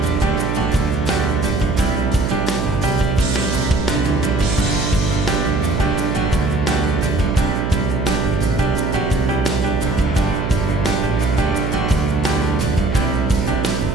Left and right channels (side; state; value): right; noise; hum, 2 dB below the sound